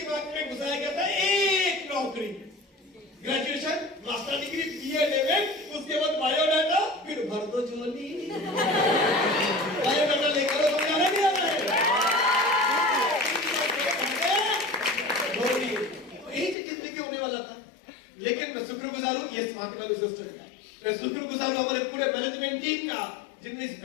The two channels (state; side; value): drops out; right; at 16.6 s